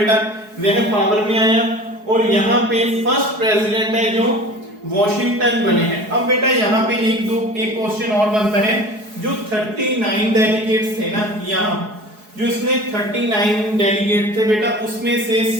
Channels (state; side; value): late; left; 4.7 ms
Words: वह पावर में आया और यहाँ पे फर्स्ट प्रेसिडेंट है जो वॉशिंगटन बने हैं। अब बेटा यहाँ पे एक क्वेश्चन और बनता है, जो 39 डेलीगेट्स थे ना, यहाँ जो इसमें 39 डेलीगेट थे बेटा, उसमें से